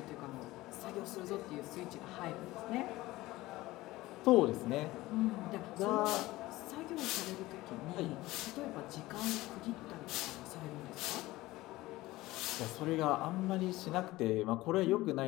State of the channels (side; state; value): right; quieter; 18.3 dB